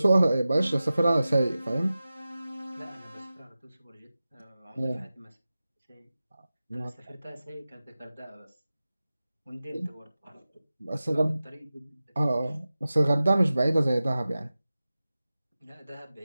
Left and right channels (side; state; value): both; inverted; correlation -0.95